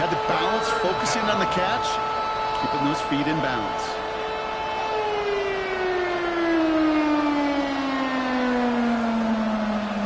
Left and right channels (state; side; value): identical; both; correlation 1.00